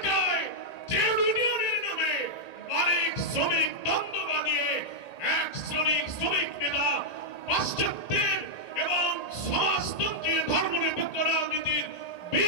ট্রেড ইউনিয়নের নামে মালিক শ্রমিক দ্বন্দ্ব বানিয়ে এক শ্রমিক নেতা পাশ্চাত্যের এবং সমাজতন্ত্রী ধর্মনিরপেক্ষ রাজনীতির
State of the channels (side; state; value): right; late; 1.9 ms